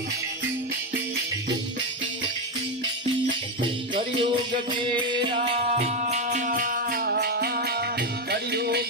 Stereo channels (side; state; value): both; normal; correlation 0.09